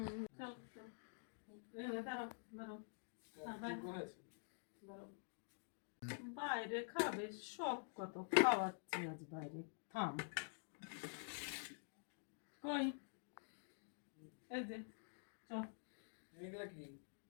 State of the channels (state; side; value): silent; right; digital silence